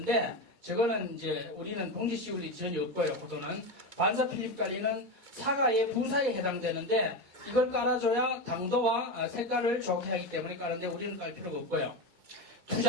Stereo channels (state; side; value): late; left; 2.2 ms